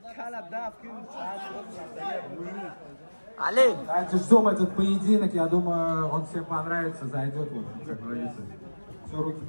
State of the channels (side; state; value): both; inverted; correlation -1.00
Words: Али! Давайте ждем этот поединок, я думаю, он всем понравится, зайдет, вот, как говорится. Все, руки